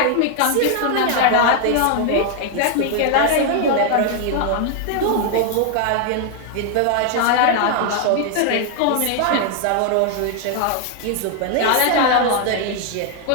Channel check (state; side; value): different; both; correlation 0.00